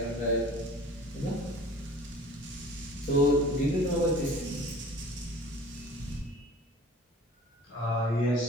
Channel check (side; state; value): both; normal; correlation 0.45